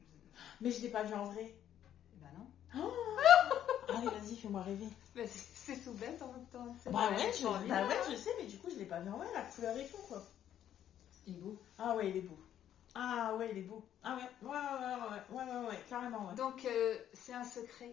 Mais je l'ai pas vu en vrai. Bah non. Oh allez, vas-y, fais-moi rêver. Mais c'est tout bête en même temps. Bah ouais, je sais, mais du coup, je l'ai pas vu en vrai, la couleur et tout, quoi. Il est beau. Ah ouais, il est beau. Ah ouais, il est beau. Ah ouais, carrément, ouais. Donc, c'est un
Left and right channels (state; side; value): quieter; right; 10.7 dB